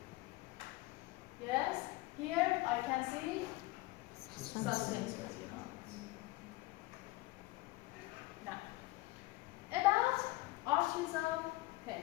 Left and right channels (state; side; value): quieter; right; 20.4 dB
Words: yes, here I can see suspensory ligaments. Now, about arteries of